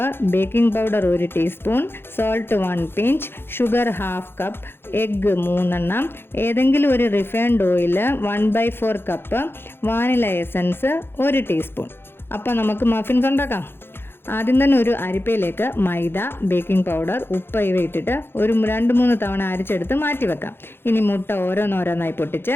baking powder 1 teaspoon, salt 1 pinch, sugar 1/2 cup, egg 3 എണ്ണം, ഏതെങ്കിലും ഒരു refined oil 1/4 cup, vanilla essence 1 teaspoon. അപ്പോൾ നമുക്ക് മഫിൻസ് ഉണ്ടാക്കാം. ആദ്യം തന്നെ ഒരു അരിപ്പയിലേക്ക് മൈദ, ബേക്കിംഗ് പൗഡർ, ഉപ്പ് ഇവ ഇട്ടിട്ട് ഒരു 2-3 തവണ അരിച്ചെടുത്ത് മാറ്റി വെക്കാം. ഇനി മുട്ട ഓരോന്നോരോന്നായി പൊട്ടിച്ച്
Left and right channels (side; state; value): right; late; 0.11 ms